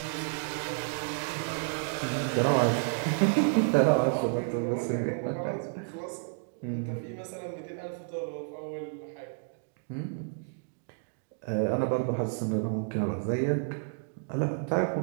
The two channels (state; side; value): silent; left; digital silence